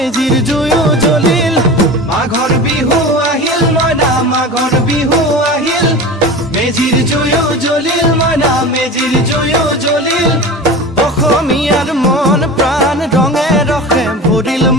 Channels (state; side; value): normal; both; correlation 0.32